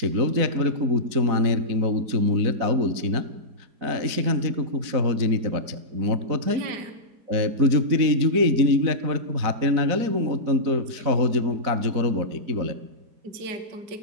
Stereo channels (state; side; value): late; left; 4.1 ms